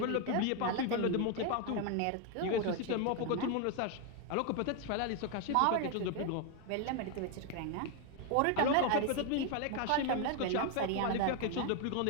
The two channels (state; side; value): different; both; correlation 0.01